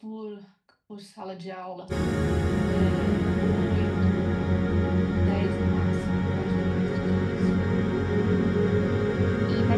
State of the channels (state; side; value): identical; both; correlation 1.00